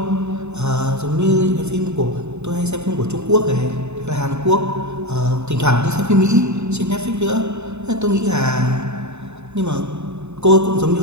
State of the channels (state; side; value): late; left; 0.82 ms